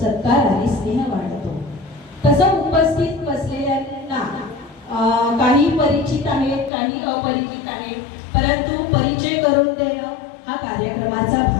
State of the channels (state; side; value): drops out; right; at 6.7 s